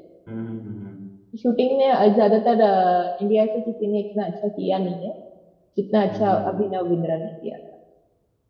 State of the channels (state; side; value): identical; both; correlation 1.00